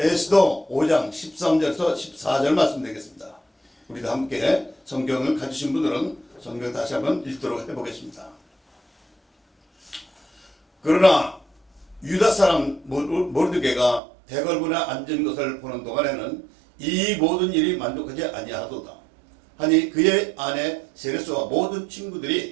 에스더 5장 13절에서 14절 말씀드리겠습니다. 우리도 함께 성경을 가지신 분들은 성경 다시 한번 읽도록 해보겠습니다. 그러나 유다 사람 모르드게가 대궐문에 앉은 것을 보는 동안에는 이 모든 일이 만족하지 아니하도다 하니 그의 아내 세레스와 모든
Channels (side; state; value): left; drops out; at 14.0 s